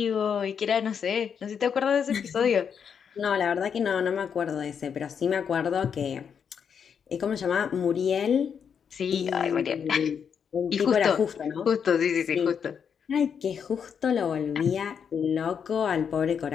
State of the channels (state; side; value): quieter; right; 7.2 dB